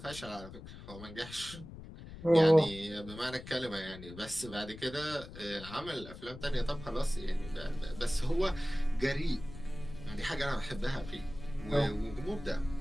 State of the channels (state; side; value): noise; left; rumble, 14 dB below the sound